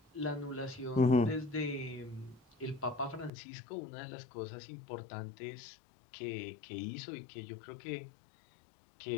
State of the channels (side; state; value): right; drops out; at 3.3 s